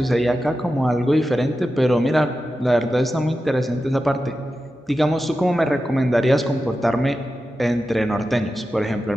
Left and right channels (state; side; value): normal; both; correlation 0.91